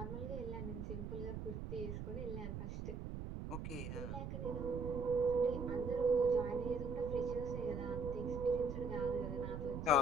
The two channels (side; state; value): right; noise; rumble, 5 dB below the sound